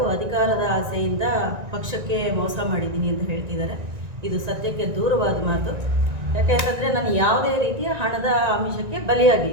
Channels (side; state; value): left; late; 1.9 ms